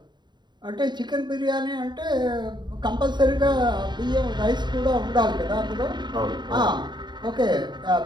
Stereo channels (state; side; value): late; left; 0.21 ms